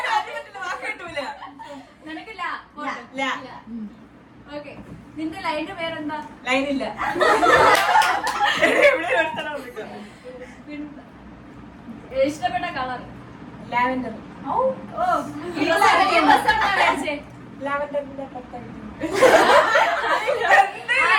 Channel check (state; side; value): identical; both; correlation 1.00